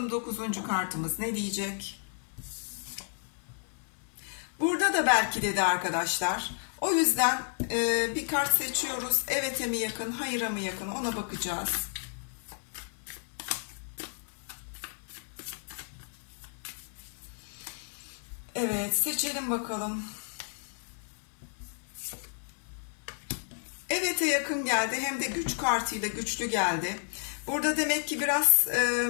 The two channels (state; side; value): silent; right; 57 dB below the other